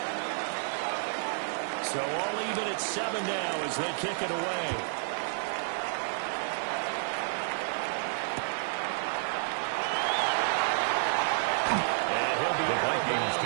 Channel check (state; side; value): silent; left; digital silence